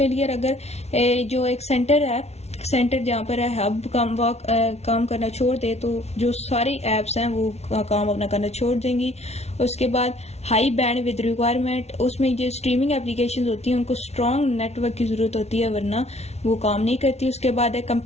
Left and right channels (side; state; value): right; late; 0.31 ms